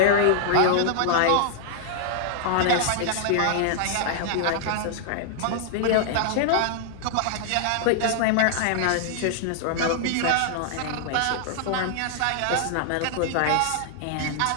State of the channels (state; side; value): different; both; correlation -0.01